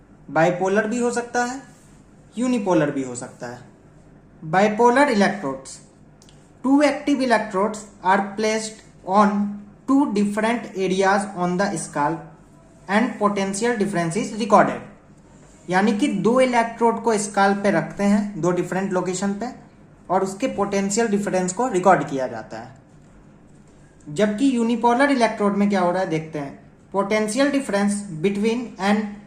बाइपोलर भी हो सकता है, यूनिपोलर भी हो सकता है। Bipolar electrodes, two active electrodes are placed on two different areas on the scalp and potential difference is recorded. यानी कि दो इलेक्ट्रोड को स्काल्प पे रखते हैं, दो डिफरेंट लोकेशन पे, और उसके पोटेंशियल डिफरेंस को रिकॉर्ड किया जाता है। जबकि यूनिपोलर इलेक्ट्रोड में क्या हो रहा है देखते हैं। Potential difference between an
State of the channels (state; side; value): identical; both; correlation 1.00